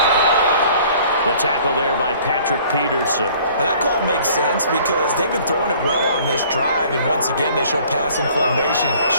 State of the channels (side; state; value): both; inverted; correlation -0.53